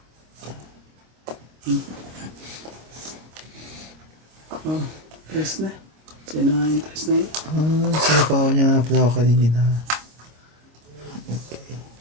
Oh, tres na. Sino nga yung tres na yun? Sinapaw niya nga pala ako kanina. Okay.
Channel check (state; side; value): late; left; 26 ms